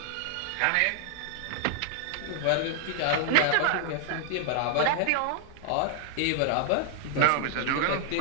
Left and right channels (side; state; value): both; different; correlation 0.00